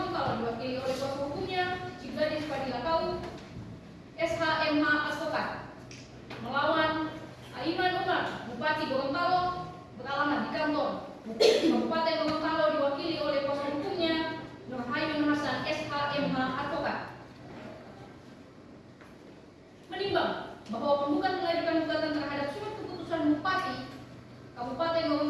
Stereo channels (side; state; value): both; identical; correlation 1.00